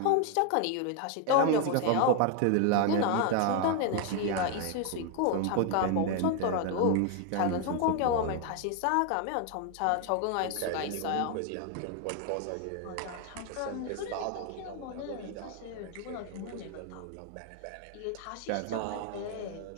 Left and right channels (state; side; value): different; both; correlation 0.01